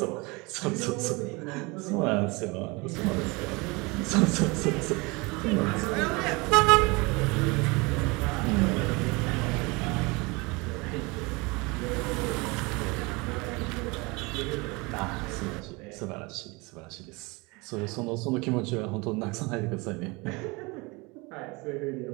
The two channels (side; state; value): left; quieter; 26.1 dB